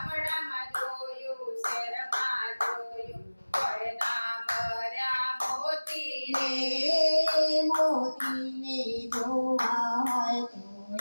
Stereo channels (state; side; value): inverted; both; correlation -1.00